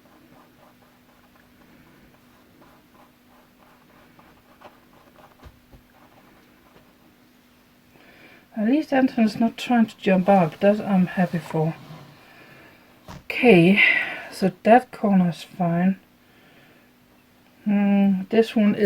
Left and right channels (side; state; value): both; identical; correlation 1.00